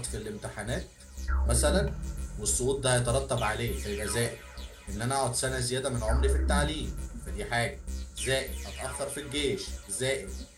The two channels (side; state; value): both; identical; correlation 1.00